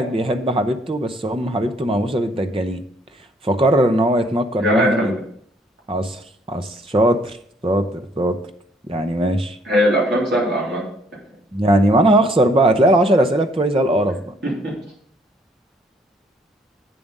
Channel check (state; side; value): normal; both; correlation 0.65